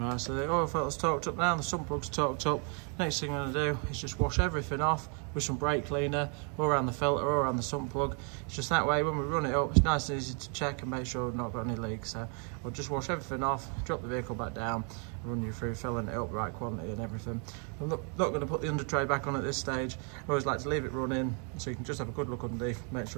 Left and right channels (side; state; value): left; quieter; 39.0 dB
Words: so the oil filter's torqued up now, the sump plug's torqued up. Next thing I'm going to do is just wash everything off with some brake cleaner, all around the filter, all around the sump plug. It's just that way when we run it up, it's nice and easy to check and make sure we've not got any leaks. So we'll just wash everything off, drop the vehicle back down, and run you through filling it up, right quantity and everything. I'm not going to put the under tray back on at this stage. I always like to leave it running so you can just have a good look underneath, make